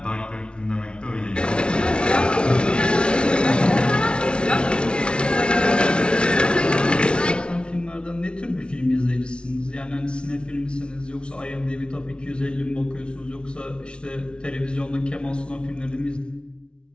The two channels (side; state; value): right; late; 0.057 ms